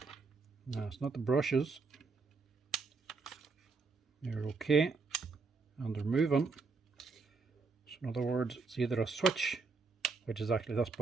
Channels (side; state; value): left; quieter; 4.4 dB